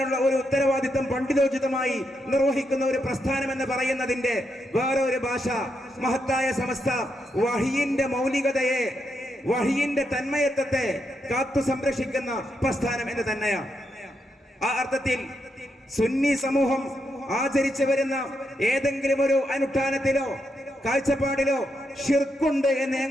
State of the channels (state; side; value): normal; both; correlation 0.82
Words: ഒരു ഉത്തരവാദിത്തം പണ്ഡിതോചിതമായി നിർവഹിക്കുന്ന ഒരു പ്രസ്ഥാനം എന്ന് പറയുന്നതിന്റെ വേറെ ഒരു ഭാഷ മഹത്തായ സമസ്ത വഹിയിന്റെ മൗലികതയെ, വഹിയിന്റെ തന്മയത്വത്തെ കാത്തു സംരക്ഷിക്കുന്ന പ്രസ്ഥാനം എന്ന് തന്നെയാണ്. ആ അർത്ഥത്തിൽ സുന്നി സമൂഹം ആചരിച്ചു വരുന്ന ഏതെങ്കിലും ഒരു അനുഷ്ഠാനത്തിലോ കാഴ്ചപ്പാടിലോ ഷിർക്കുണ്ട് എന്ന്